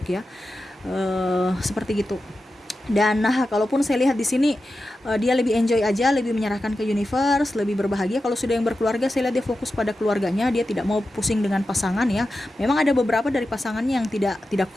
ya, seperti gitu. Dan kalaupun saya lihat di sini dia lebih enjoy aja, lebih menyerahkan ke universe, lebih berbahagia. Kalau sudah yang berkeluarga, saya lihat dia fokus pada keluarganya, dia tidak mau pusing dengan pasangan ya. Memang ada beberapa dari pasangannya yang tidak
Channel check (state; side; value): normal; both; correlation 0.92